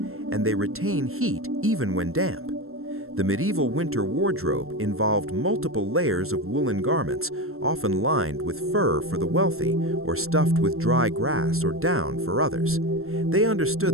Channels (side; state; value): left; late; 0.62 ms